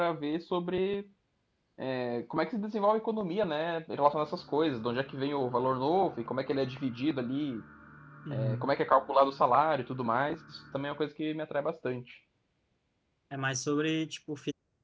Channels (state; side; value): identical; both; correlation 1.00